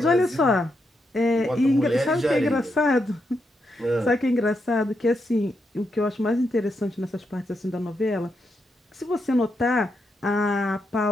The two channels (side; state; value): both; normal; correlation 0.82